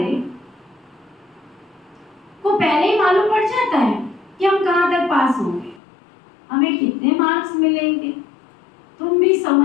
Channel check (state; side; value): drops out; right; at 5.8 s